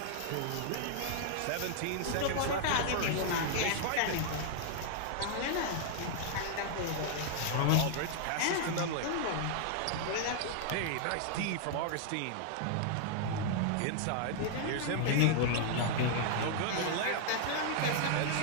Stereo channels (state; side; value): different; both; correlation -0.01